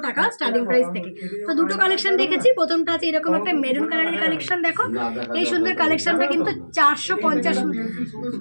টাকা স্টার্টিং প্রাইস থেকে। তো দুটো কালেকশন দেখেছি, প্রথমটা আছে এরকম একটা মেরুন কালারের কালেকশন। দেখো এই সুন্দর কালেকশনটা কিন্তু 450।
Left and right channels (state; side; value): inverted; both; correlation -1.00